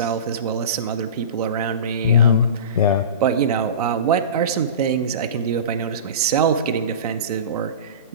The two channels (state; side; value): inverted; both; correlation -0.31